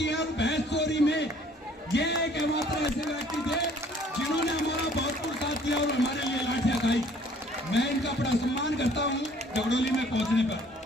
हैं और भैंस चोरी में ये एकमात्र ऐसे व्यक्ति थे जिन्होंने हमारा भरपूर साथ दिया और हमारे लिए लाठियां खाई। मैं इनका बड़ा सम्मान करता हूं जगडोली में पहुंचने पर।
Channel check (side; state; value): both; normal; correlation 0.57